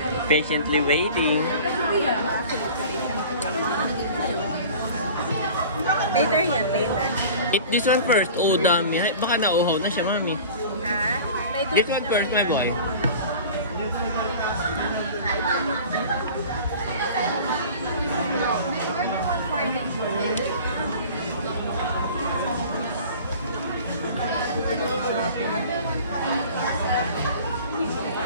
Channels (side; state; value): both; inverted; correlation -0.41